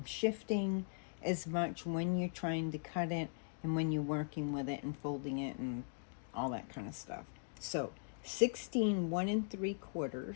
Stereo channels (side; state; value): right; silent; digital silence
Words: shifting as much when you're trying to cut it and when you're working with it and folding it and all that kind of stuff. So 16 1 3/4